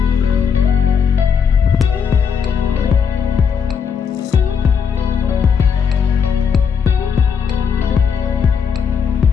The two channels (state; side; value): quieter; right; 6.7 dB